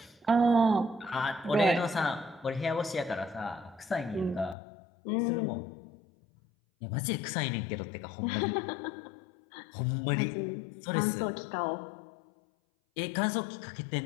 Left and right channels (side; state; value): right; drops out; at 4.5 s